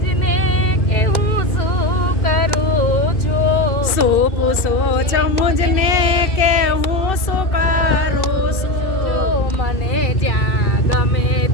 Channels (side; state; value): right; late; 2.6 ms